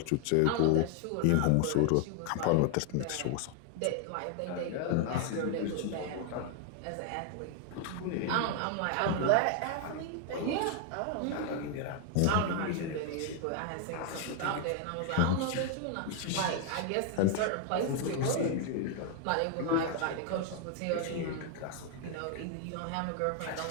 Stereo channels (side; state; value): both; different; correlation 0.00